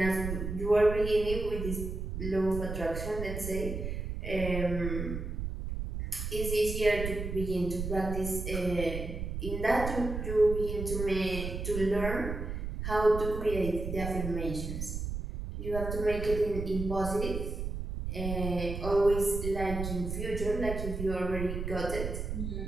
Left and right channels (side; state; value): right; noise; rumble, 5 dB below the sound